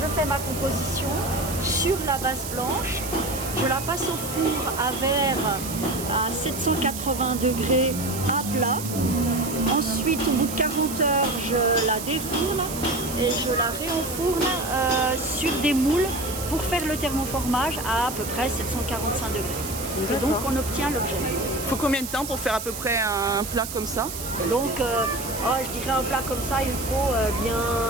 fais ma composition sur la base blanche. Je la passe au four à verre à 780 degrés à plat. Ensuite, au bout de 40 heures, je la défourne et je la réenfourne sur des moules pour faire le thermoformage à peu près 745 degrés. Et donc, on obtient l'objet. Il faut combien de temps pour faire à peu près un plat comme ça? Donc, je dirais un plat comme ça, il faut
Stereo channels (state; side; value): noise; right; hiss, 8 dB below the sound